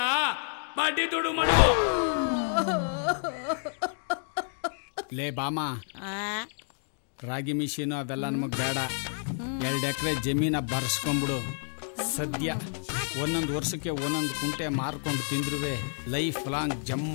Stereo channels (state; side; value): silent; right; 58 dB below the other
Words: ಬಡ್ಡಿ ದುಡ್ಡು ಮಡಗು. ಲೇ ಬಾಮ, ರಾಗಿ ಮಿಷಿನು ಅವೆಲ್ಲ ನಮಗ್ ಬೇಡ. 2 ಎಕರೆ ಜಮೀನ ಬರ್ಸ್ಕೊಂಡ್ಬಿಡು. ಸದ್ಯ 1 ವರ್ಷಕ್ಕೆ 1 ಕುಂಟೆ ಮಾರ್ಕೊಂಡು ತಿಂದ್ರುವೆ ಲೈಫ್ ಲಾಂಗ್ ಜಮ್